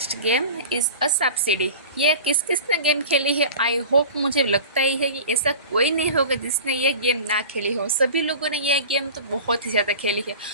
game is a subsidy. ये किस किस ने गेम खेली है? आई होप, मुझे लगता ही है कि ऐसा कोई नहीं होगा जिसने ये गेम ना खेली हो। सभी लोगों ने यह गेम तो बहुत ही ज़्यादा खेली है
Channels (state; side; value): inverted; both; correlation -0.37